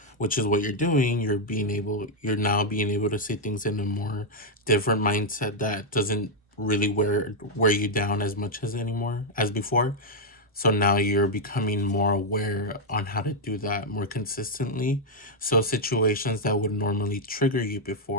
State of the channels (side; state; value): both; normal; correlation -0.01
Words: which is what you're doing. You're now being able to see things in a more different mindset that doesn't really wear you down as much as before. So now you're becoming more aware on how to do that more consistently. So situations that would normally trigger you